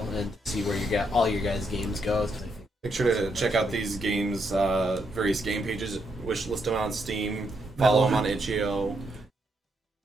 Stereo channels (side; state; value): both; normal; correlation 0.78